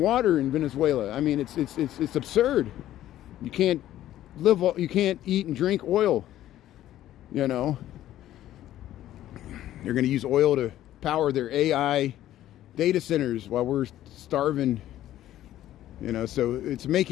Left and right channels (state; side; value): quieter; right; 13.2 dB